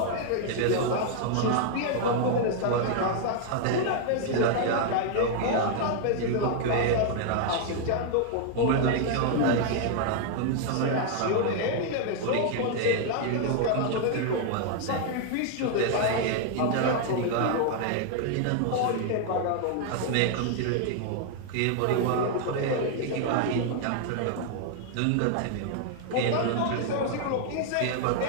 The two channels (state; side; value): different; both; correlation 0.00